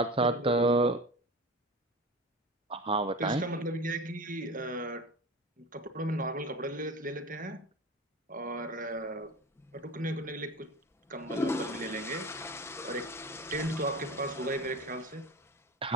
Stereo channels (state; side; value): normal; both; correlation 0.31